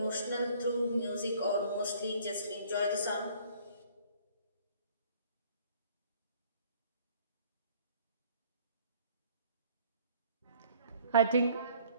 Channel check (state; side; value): inverted; both; correlation -0.56